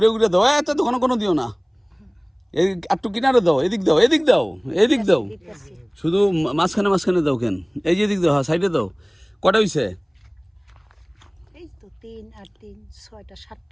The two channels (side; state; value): both; identical; correlation 1.00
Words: দাও। এত তো কোনো দিও না, এই একটু কিনারে দাও, এদিক দাও, শুধু মাঝখানে দাও। কেন এই যে এদিক দাও, হ্যাঁ সাইডে দাও। কটা হয়েছে?